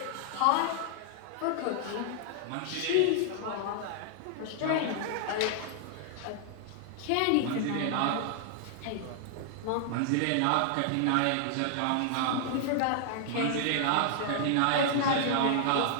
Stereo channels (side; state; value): both; different; correlation -0.01